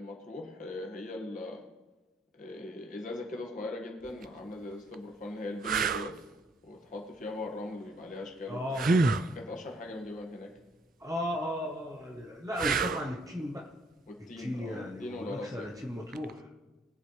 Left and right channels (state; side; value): normal; both; correlation 0.68